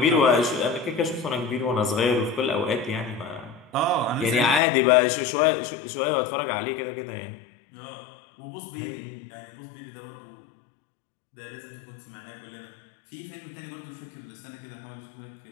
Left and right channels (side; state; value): right; drops out; at 4.6 s